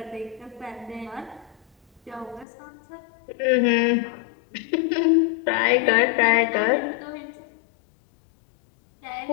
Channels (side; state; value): right; drops out; at 2.5 s